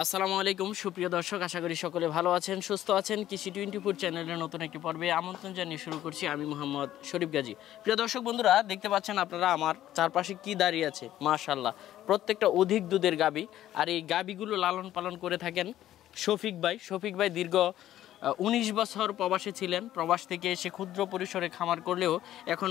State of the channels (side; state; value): right; quieter; 12.9 dB